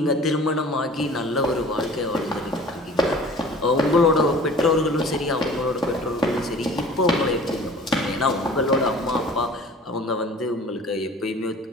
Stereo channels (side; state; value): both; normal; correlation 0.46